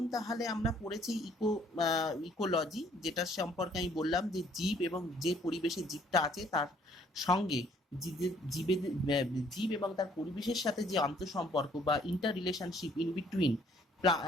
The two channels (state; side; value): normal; both; correlation 0.62